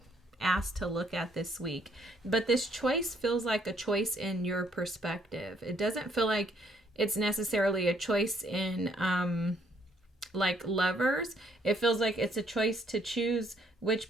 asked to look at this week. But this choice feels like a choice in your perspective. It doesn't feel like it's necessarily a choice in like lovers. It feels like it's a choice to choose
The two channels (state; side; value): normal; both; correlation 0.68